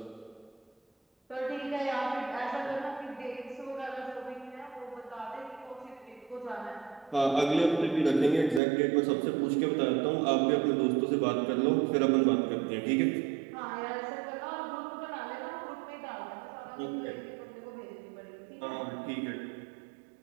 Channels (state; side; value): drops out; left; at 8.6 s